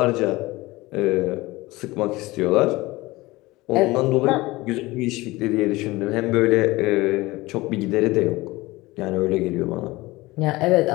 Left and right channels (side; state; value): right; quieter; 20.3 dB